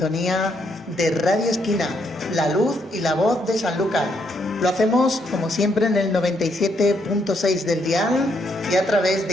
de Radio Esquina, la luz y la voz de Sanlúcar. Lo hacemos, como siempre, en el 97.6 del dial y a través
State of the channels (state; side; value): normal; both; correlation 0.74